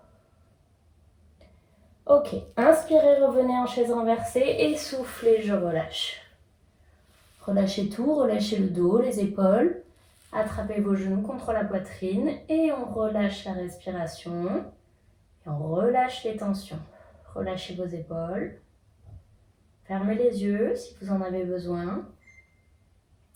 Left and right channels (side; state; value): both; identical; correlation 1.00